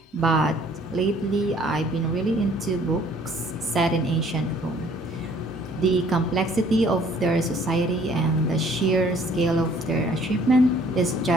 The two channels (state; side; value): normal; both; correlation 0.58